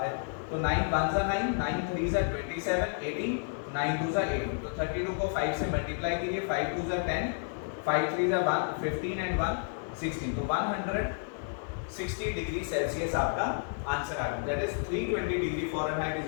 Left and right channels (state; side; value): silent; right; 57 dB below the other